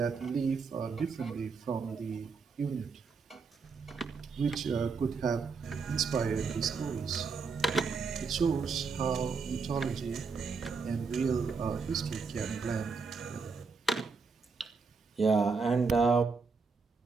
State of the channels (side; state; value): left; quieter; 4.9 dB